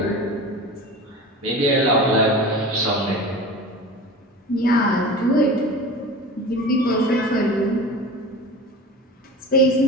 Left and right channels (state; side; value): normal; both; correlation 0.34